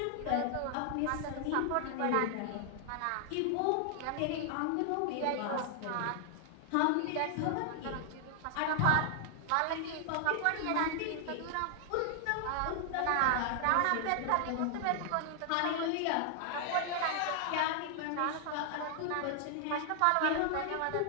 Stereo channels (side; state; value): both; different; correlation 0.00